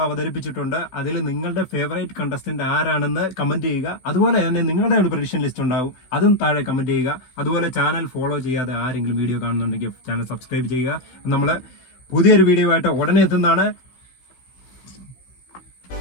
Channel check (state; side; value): late; right; 16 ms